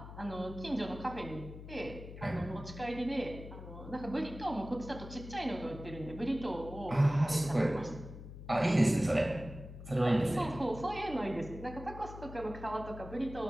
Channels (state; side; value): noise; left; hum, 12 dB below the sound